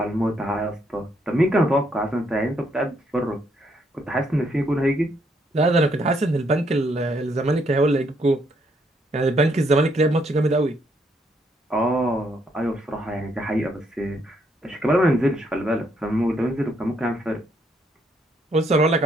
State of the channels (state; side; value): normal; both; correlation 0.73